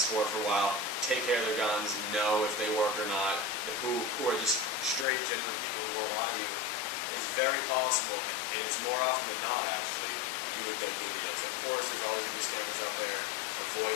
for a while, take care of their guns, know if they work or not, who are just straight, genuine people who won't lie to you, it's very possible, and it's more often than not actually, you would get good deals. Of course, there's always going to be scammers out there.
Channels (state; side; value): drops out; right; at 5.1 s